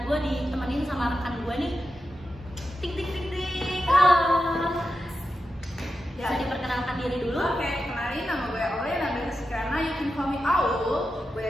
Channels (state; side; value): normal; both; correlation 0.90